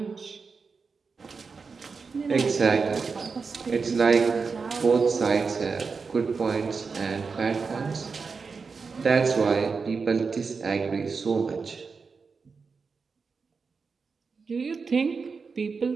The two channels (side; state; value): left; quieter; 5.0 dB